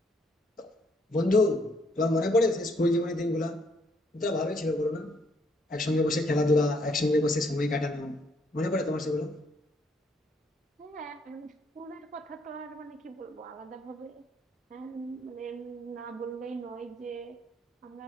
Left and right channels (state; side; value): normal; both; correlation 0.69